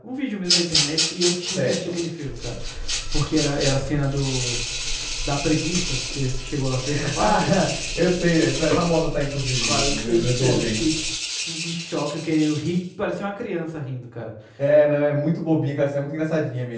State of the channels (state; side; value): identical; both; correlation 1.00